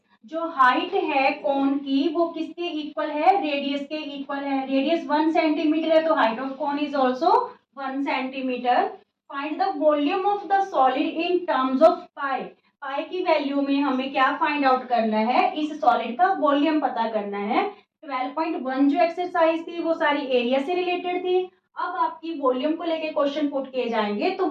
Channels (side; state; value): both; identical; correlation 1.00